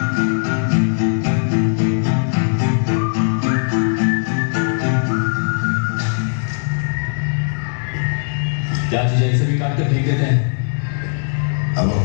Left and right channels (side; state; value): right; silent; digital silence